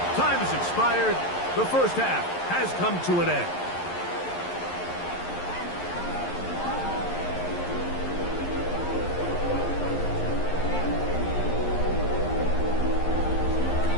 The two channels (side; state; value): right; late; 11 ms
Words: Time has expired. The first half has come to an end.